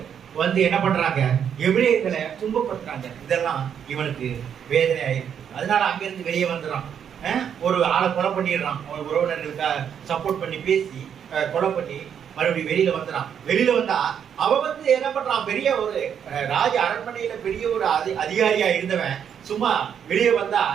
என்ன பண்றாங்க, எபிரேயர்களை துன்பப்படுத்துறாங்க. இதெல்லாம் இவனுக்கு வேதனை ஆயிருக்கு. அதனால அங்கிருந்து வெளியே வந்துடுறான். ஒரு ஆளை கொலை பண்ணிடுறான். அவன் உறவினர்களுக்காக சப்போர்ட் பண்ணி பேசி கொலை பண்ணி மறுபடியும் வெளியில வந்துடான். வெளியில வந்தா அவன் என்ன பண்றான், பெரிய ஒரு ராஜ அரண்மனையில பெரிய ஒரு அதிகாரியா இருந்தவன் சும்மா வெளியே வந்தா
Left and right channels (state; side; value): quieter; left; 8.3 dB